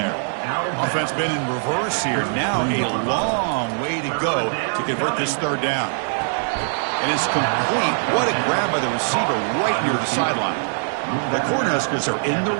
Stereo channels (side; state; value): left; silent; digital silence